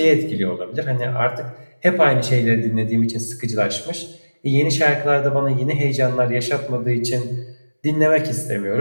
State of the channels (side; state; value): both; inverted; correlation -1.00